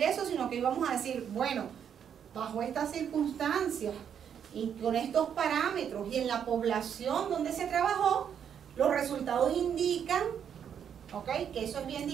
eso, sino que íbamos a decir, bueno, bajo estas circunstancias y con estos parámetros y en la población donde se trabajó, los resultados indican, ¿ok?, que eso es bien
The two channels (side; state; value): left; quieter; 8.3 dB